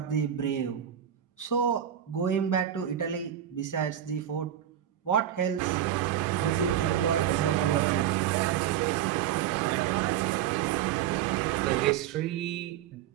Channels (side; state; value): left; quieter; 10.4 dB